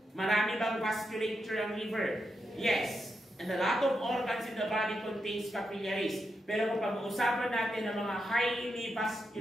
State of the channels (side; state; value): both; normal; correlation 0.85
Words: Marami bang vasculature ang liver? Yes. And a lot of organs in the body contains capillaries. Pero kung pag-uusapan natin ng mga highly